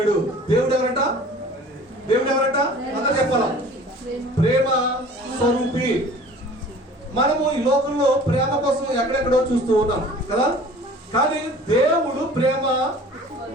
దేవుడు ఎవరట? దేవుడు ఎవరట? అందరూ చెప్పాలా? ప్రేమ స్వరూపి. మనము ఈ లోకంలో ప్రేమ కోసం ఎక్కడెక్కడో చూస్తూ ఉన్నాం కదా, కానీ దేవుడు ప్రేమ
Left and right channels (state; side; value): normal; both; correlation 0.46